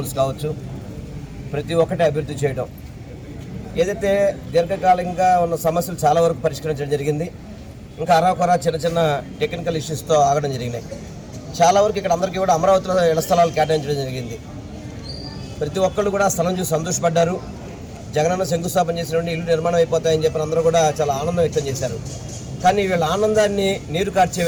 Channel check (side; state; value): both; identical; correlation 1.00